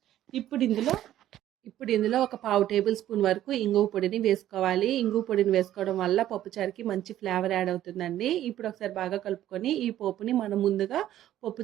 ఇప్పుడు ఇందులో ఒక 1/2 టేబుల్ స్పూన్ వరకు ఇంగువ పొడిని వేసుకోవాలి. ఇంగువ పొడిని వేసుకోవడం వల్ల పప్పుచారుకి మంచి ఫ్లేవర్ యాడ్ అవుతుందండి. ఇప్పుడు ఒకసారి బాగా కలుపుకొని ఈ పోపుని మనం ముందుగా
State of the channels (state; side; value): quieter; left; 12.6 dB